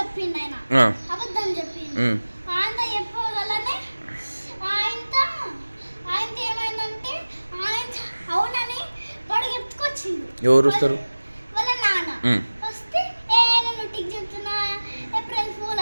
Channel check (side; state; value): both; inverted; correlation -1.00